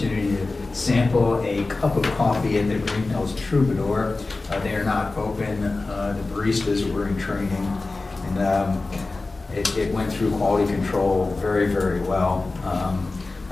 to sample a cup of coffee at the Greenhills Troubadour. They are not open. The baristas were in training, and it went through quality control very, very well.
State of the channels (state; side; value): quieter; right; 3.4 dB